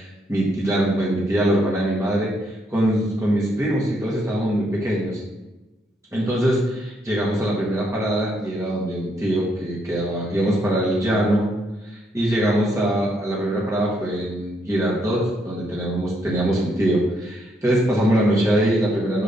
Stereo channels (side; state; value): both; normal; correlation 0.75